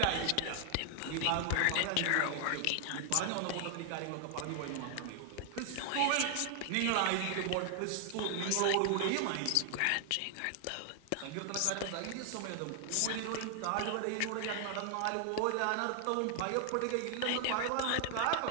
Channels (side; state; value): both; different; correlation 0.00